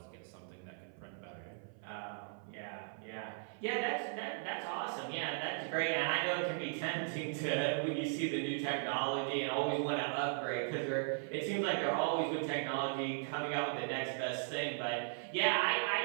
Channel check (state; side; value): silent; left; 53 dB below the other